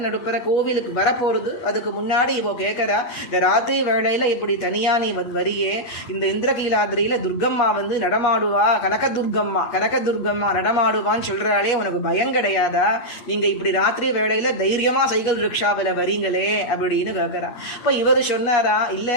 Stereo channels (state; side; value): late; right; 8.3 ms